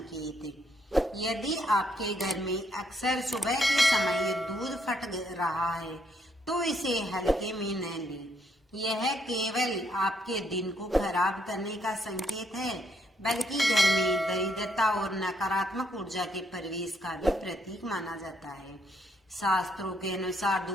यदि आपके घर में अक्सर सुबह के समय दूध फट रहा है तो इसे हल्के में न लें। यह केवल आपके दिन को खराब करने का संकेत है, बल्कि घर में दरिद्रता और नकारात्मक ऊर्जा के प्रवेश का भी प्रतीक माना जाता है। शास्त्रों के अनुसार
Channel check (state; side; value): normal; both; correlation 0.72